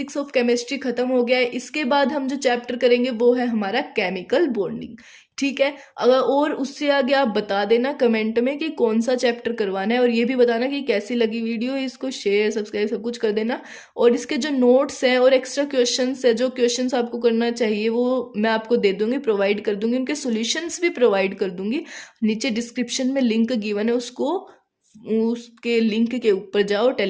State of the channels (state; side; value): identical; both; correlation 1.00